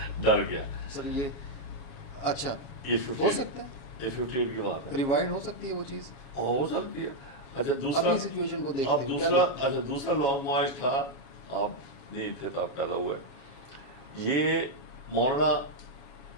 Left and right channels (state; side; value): late; right; 7.3 ms